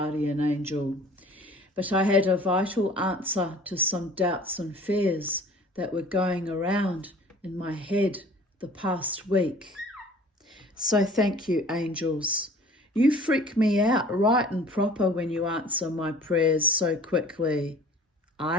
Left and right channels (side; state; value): both; normal; correlation 0.47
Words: angel. But I had a vital answer to some doubts and fears that were going around in my head the past week. So thank you, angels. You freak me out right and proper when you answer my prayers so quickly.